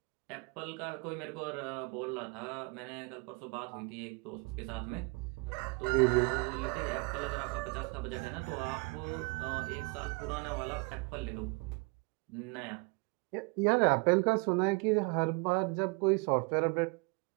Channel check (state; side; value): quieter; left; 30.7 dB